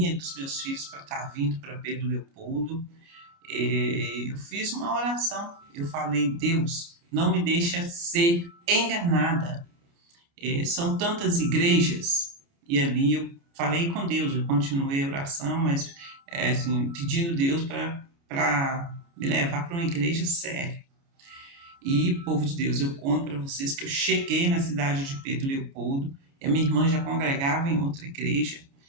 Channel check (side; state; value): left; late; 29 ms